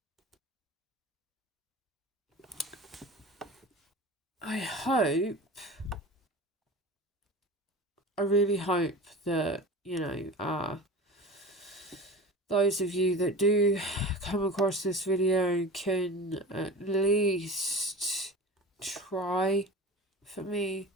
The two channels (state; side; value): normal; both; correlation 0.34